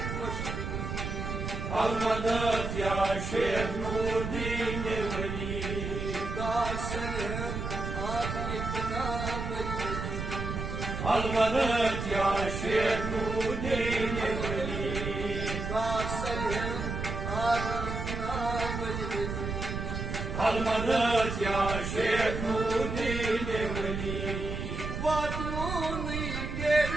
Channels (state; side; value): noise; right; rumble, 4 dB below the sound